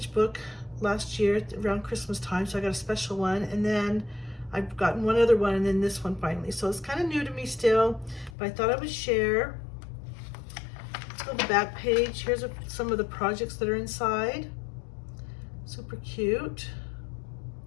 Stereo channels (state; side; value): drops out; right; at 8.3 s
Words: book last year around Christmas time, so I got a special one, and then I've gotten one other one, and then this one finally. So it's kind of new to me still, but I thought I would share. Let's go to the back page. Here's some of the projects that are inside. Super cute.